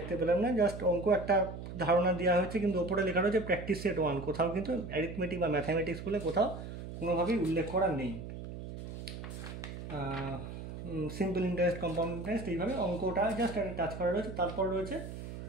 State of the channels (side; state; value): right; noise; hum, 9 dB below the sound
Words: পেলাম না। জাস্ট অঙ্ক একটা ধারণা দেওয়া হয়েছে, কিন্তু ওপরে লেখা রয়েছে প্র্যাকটিস সেট 1, কোথাও কিন্তু অ্যারিথমেটিক বা ম্যাথামেটিক্স বলে কোথাও কোনোভাবেই উল্লেখ করা নেই। সিম্পল ইন্টারেস্ট, কম্পাউন্ড ইন্টারেস্ট, এইভাবে অঙ্কটা জাস্ট একটা টাচ করা রয়েছে। তারপর রয়েছে